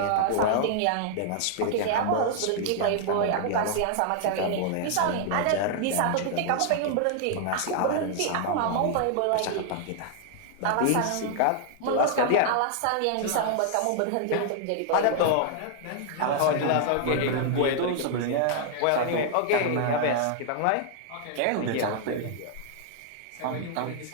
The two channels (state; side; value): different; both; correlation 0.00